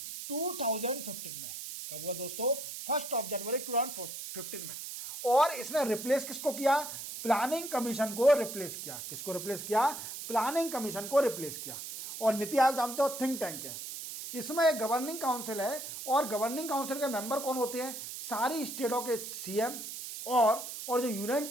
2015 में। कब हुआ दोस्तों, 1 जनवरी 2015 में। और इसने रिप्लेस किसको किया, प्लानिंग कमीशन को रिप्लेस किया। किसको रिप्लेस किया, प्लानिंग कमीशन को रिप्लेस किया। और नीति आयोग जानते हो थिंक टैंक है, इसमें एक गवर्निंग काउंसिल है और गवर्निंग काउंसिल के मेंबर कौन होते हैं? सारी स्टेटों के सीएम और जो यूनियन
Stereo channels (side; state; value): right; noise; hiss, 8 dB below the sound